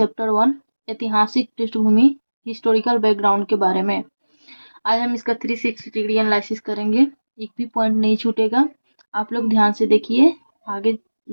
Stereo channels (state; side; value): inverted; both; correlation -1.00